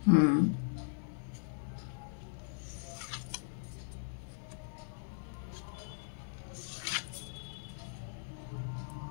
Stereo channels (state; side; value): silent; right; 52 dB below the other